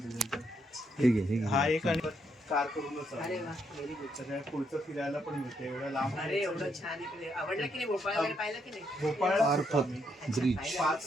ठीक आहे. हा एक आणि कार करूनच. अरे वा, व्हेरी गुड. सगळ्या पुढचं फिरायला पण मिळते एवढ्या लांब. अरे एवढं छान इकडे. आवडलं की नाही भोपाळ वगैरे? पाहिलं की नाही? भोपाळ ब्रिज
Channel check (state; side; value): normal; both; correlation 0.76